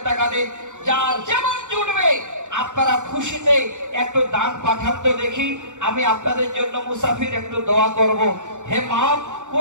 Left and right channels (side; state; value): left; late; 0.85 ms